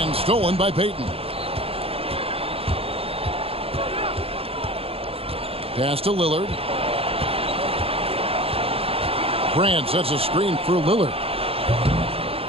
stolen by Payton. Pass to Lillard. Grant sets a screen for Lillard.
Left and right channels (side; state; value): left; late; 0.28 ms